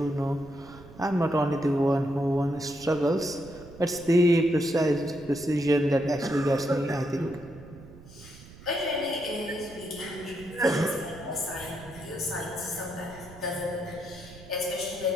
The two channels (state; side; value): noise; right; rumble, 19 dB below the sound